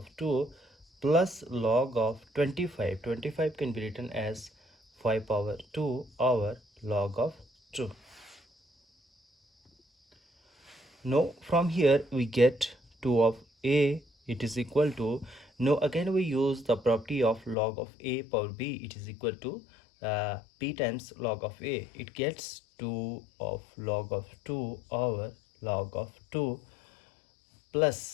2 plus log of 25. 25 can be written as 5 power 2 over log of 2. Now, from here we get 2 of a. It is equal to, now again we use the property of log of a power b. It is equal to p times log of a. It gets 2 of log of 2 over log of 2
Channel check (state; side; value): drops out; right; at 17.6 s